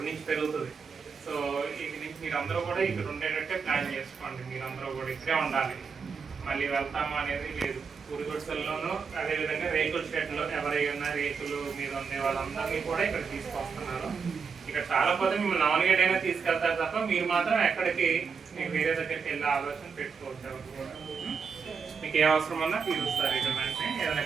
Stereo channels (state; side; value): quieter; left; 5.8 dB